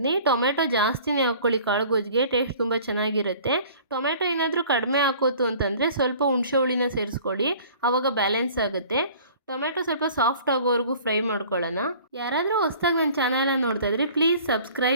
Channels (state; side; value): inverted; both; correlation -0.48